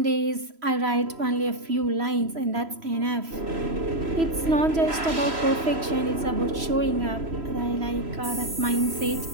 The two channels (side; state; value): left; late; 3.0 ms